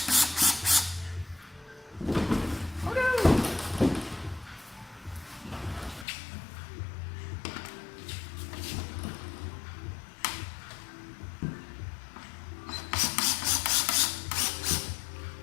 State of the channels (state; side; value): drops out; right; at 6.1 s